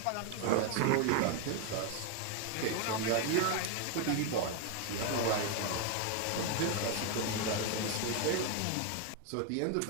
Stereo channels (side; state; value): both; different; correlation 0.01